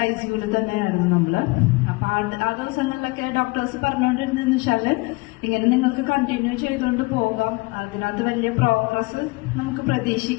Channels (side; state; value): right; quieter; 25.2 dB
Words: ICUവിൽ തന്നെയായിരുന്നു നമ്മള്. അപ്പൊ ആ ദിവസങ്ങളിലൊക്കെ ഡോക്ടേഴ്സ് പറഞ്ഞുകൊണ്ടിരുന്നെന്ന് വെച്ചാല് ഇങ്ങനെ നിങ്ങൾക്ക് കണ്ടിന്യൂ ചെയ്തുകൊണ്ട് പോകാം, അതിനകത്ത് വലിയ പ്രോഗ്രസ് നമുക്ക്